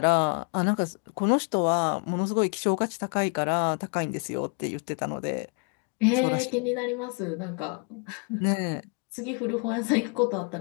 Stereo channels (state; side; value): quieter; right; 37.8 dB